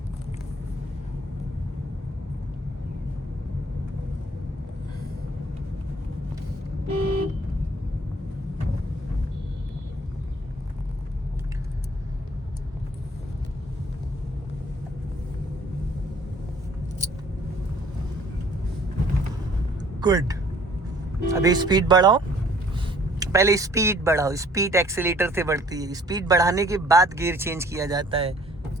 गुड। अभी स्पीड बढ़ाओ। पहले स्पीड बढ़ाओ। स्पीड एक्सीलेटर से बढ़ती है। स्पीड बढ़ाने के बाद गियर चेंज किया जाता है।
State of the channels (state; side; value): normal; both; correlation 0.57